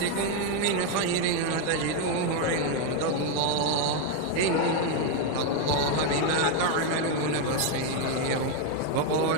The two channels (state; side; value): different; both; correlation 0.01